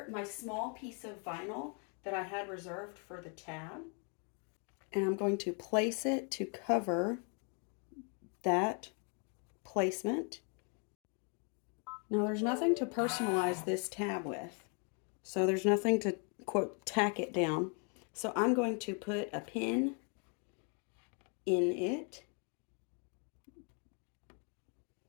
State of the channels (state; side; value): quieter; right; 39.1 dB